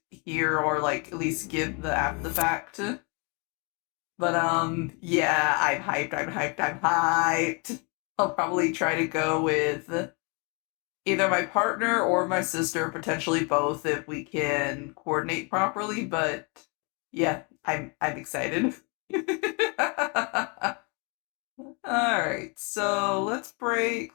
here, or like at least give the after the fact. But yeah, I'm hyped. I'll probably try to go with either my partner or my sister, potentially both if we can coordinate properly, but yeah, I'm excited. Alright, so let's break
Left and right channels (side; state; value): right; quieter; 33.3 dB